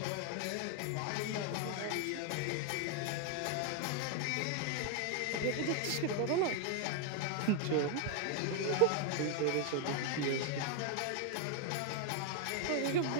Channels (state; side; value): different; both; correlation 0.00